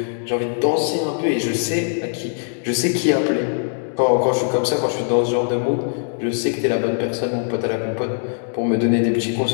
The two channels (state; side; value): silent; right; digital silence